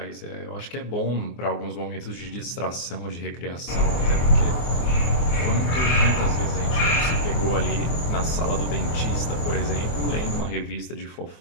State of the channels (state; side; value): late; right; 24 ms